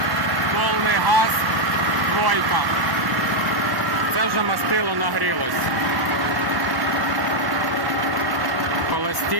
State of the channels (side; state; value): left; late; 1.1 ms